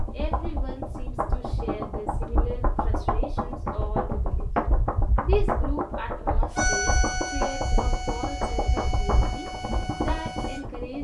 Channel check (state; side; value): identical; both; correlation 1.00